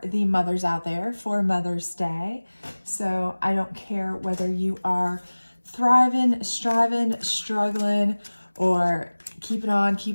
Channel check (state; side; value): inverted; both; correlation -1.00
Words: the mothers out there for Mother's Day. So, I don't care whether you are thriving, striving, struggling, or keeping